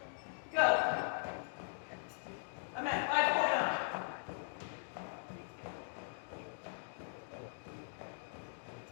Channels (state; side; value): silent; right; digital silence